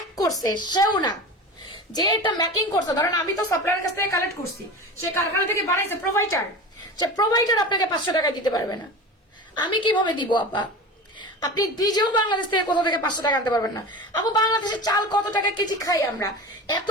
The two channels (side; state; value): both; normal; correlation 0.31